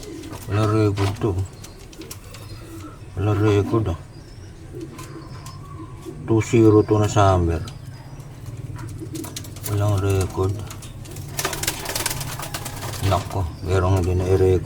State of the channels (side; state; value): both; identical; correlation 1.00